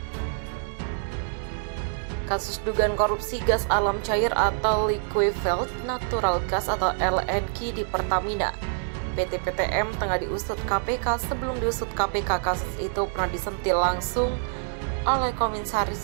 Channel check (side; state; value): left; silent; 61 dB below the other